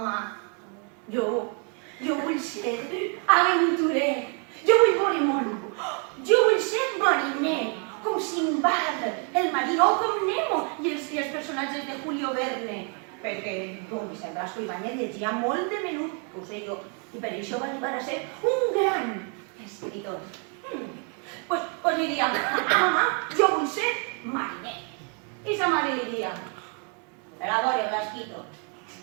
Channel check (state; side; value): quieter; left; 39.0 dB